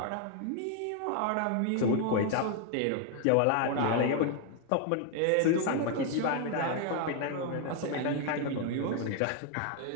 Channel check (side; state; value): both; different; correlation 0.00